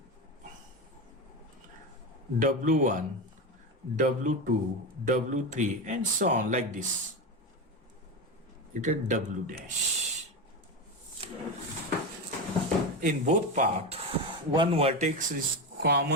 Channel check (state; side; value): normal; both; correlation 0.18